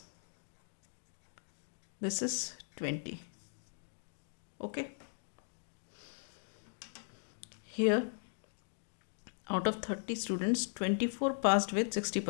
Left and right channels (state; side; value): silent; right; digital silence